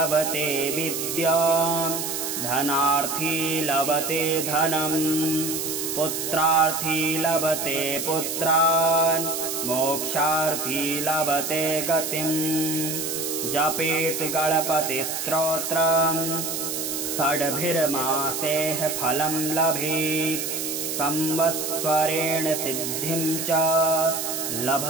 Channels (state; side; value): noise; right; hiss, 3 dB below the sound